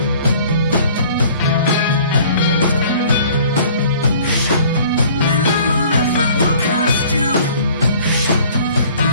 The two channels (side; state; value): both; inverted; correlation -0.52